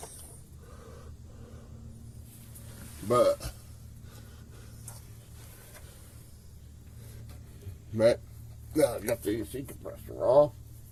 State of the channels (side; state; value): both; identical; correlation 1.00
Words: But now I got the AC compressor off.